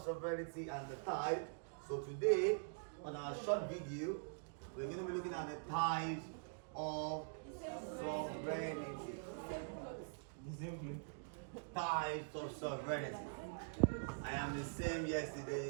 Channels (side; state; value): left; silent; digital silence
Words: sovereignty and the type. So today, on our short video, we're going to be looking at the types of sovereignty. Types of sovereignty. I am the same